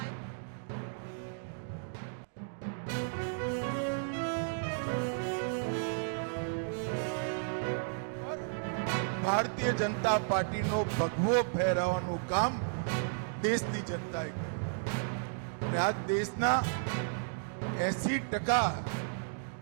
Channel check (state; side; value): silent; left; digital silence